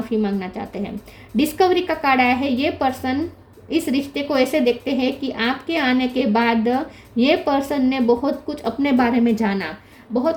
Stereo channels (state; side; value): identical; both; correlation 1.00